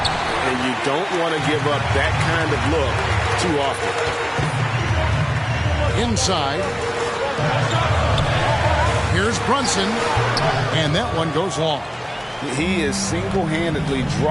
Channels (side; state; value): both; identical; correlation 1.00